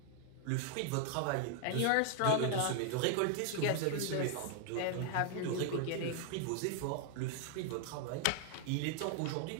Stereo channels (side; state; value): both; different; correlation 0.00